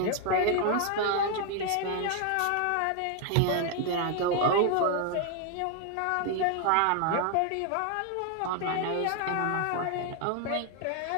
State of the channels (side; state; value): both; different; correlation 0.00